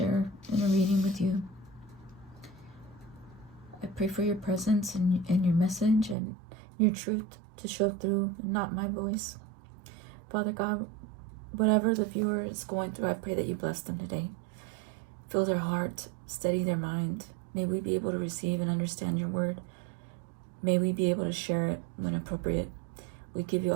in a reading with you. I pray for your presence and your message and your truth to show through, not my voice. Father God, whatever the viewer is going through, I pray that you bless them today. Fill their heart, steady their mind. May we be able to receive and understand your word. May we be able to share it when appropriate. We give you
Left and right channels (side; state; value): left; drops out; at 6.2 s